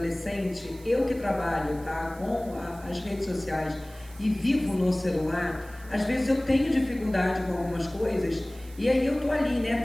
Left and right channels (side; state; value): right; noise; hiss, 23 dB below the sound